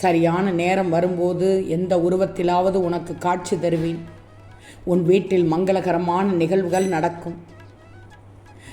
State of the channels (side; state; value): both; identical; correlation 1.00